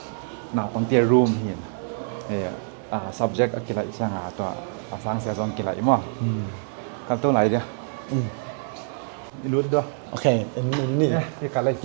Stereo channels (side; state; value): left; silent; digital silence